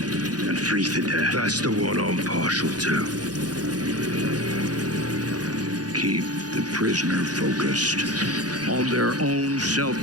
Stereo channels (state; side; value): late; left; 0.69 ms